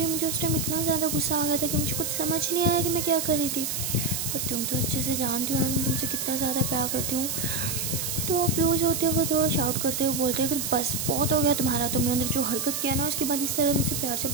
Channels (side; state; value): right; noise; hiss, 2 dB below the sound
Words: मुझे उस टाइम इतना ज़्यादा गुस्सा आ गया था कि मुझे कुछ समझ नहीं आया कि मैं क्या कर रही थी। पर तुम तो अच्छे से जानती हो ना कि मैं तुमसे कितना ज़्यादा प्यार करती हूँ। तो पीयू जो होती है वो थोड़ा शाउट करते हुए बोलते हैं कि बस बहुत हो गया तुम्हारा, तुमने अंदर जो हरकत किया ना उसके बाद इस तरह मुझसे प्यार से